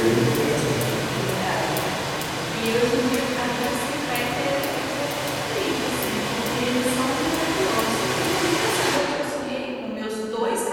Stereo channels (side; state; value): both; identical; correlation 1.00